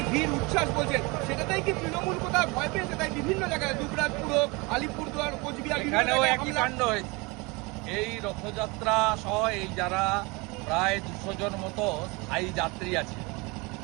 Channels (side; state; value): left; quieter; 26.4 dB